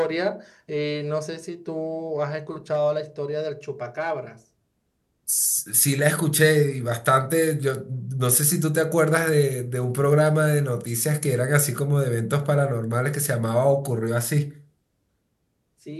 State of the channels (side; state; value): both; identical; correlation 1.00